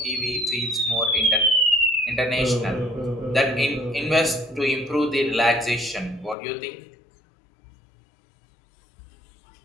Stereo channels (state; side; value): drops out; right; at 6.4 s